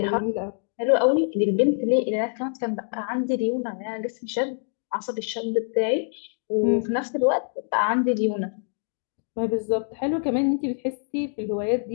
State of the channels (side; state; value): right; silent; digital silence